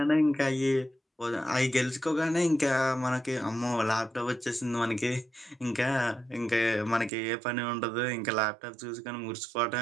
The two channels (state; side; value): drops out; left; at 7.1 s